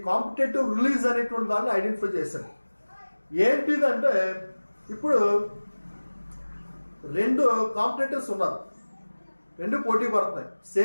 కాంపిటేటివ్ రిలీజ్ అనేటువంటి దాన్ని ఐడెంటిఫై చేశాడు. ఏంటిదంటే ఇప్పుడు రెండు కాంపిటేటర్స్ ఉన్నారు, రెండు పోటీ పడుతున్నాయి.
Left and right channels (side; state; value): both; inverted; correlation -1.00